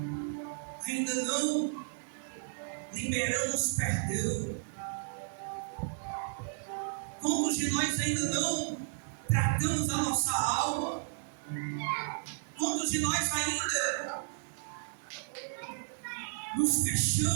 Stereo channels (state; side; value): silent; left; 56 dB below the other